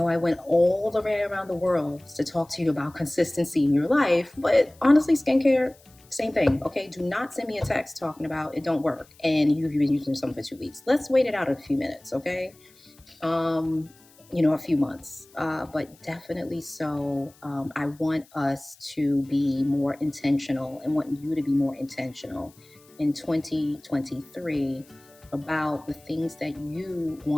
I went all the way around the world to talk to you about consistency in your life, but honestly, skincare, same thing. Okay? Do not send me a text talking about it don't work and you've been using something for 2 weeks. Let's wait it out a few minutes. Okay? A few months, but definitely so. I want us to be more intentional and want you to be more intentional in 2023 about the things that you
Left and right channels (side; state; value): left; noise; hiss, 28 dB below the sound